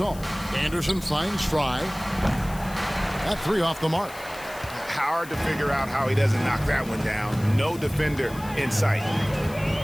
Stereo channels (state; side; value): noise; left; hiss, 18 dB below the sound